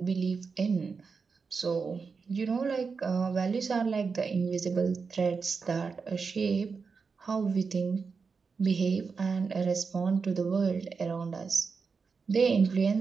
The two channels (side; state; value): left; quieter; 5.1 dB